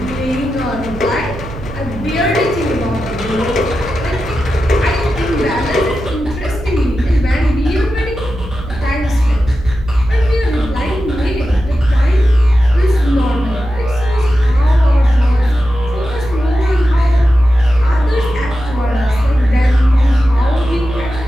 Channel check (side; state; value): right; noise; hum, 12 dB below the sound